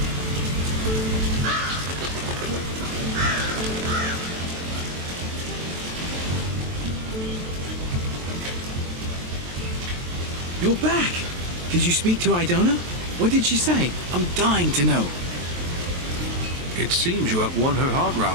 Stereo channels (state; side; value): late; left; 23 ms